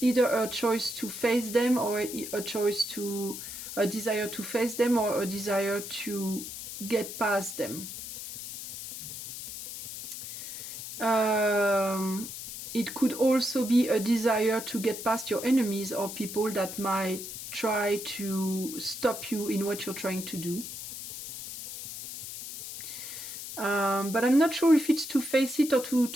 either a choice to face them, or a desire to face them, or a desire to get past them. It could also be a desire to get past your enemies or people that might try to stop you in what you're trying to do. But I'm not sure if it's to face it or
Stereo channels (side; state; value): left; noise; hiss, 9 dB below the sound